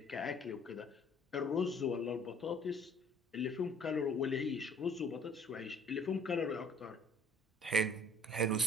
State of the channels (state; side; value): normal; both; correlation 0.57